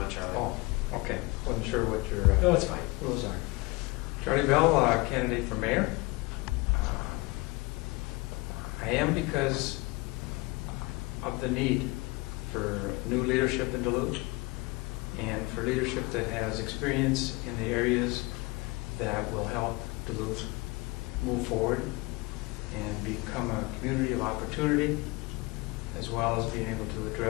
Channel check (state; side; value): quieter; right; 24.5 dB